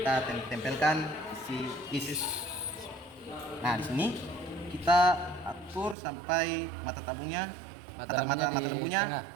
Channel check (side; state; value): left; drops out; at 6.0 s